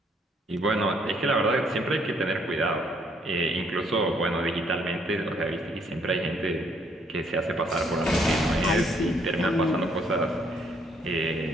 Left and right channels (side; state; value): both; normal; correlation 0.67